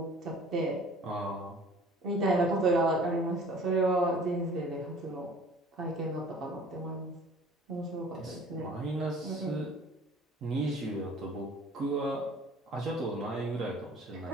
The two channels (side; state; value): both; normal; correlation 0.49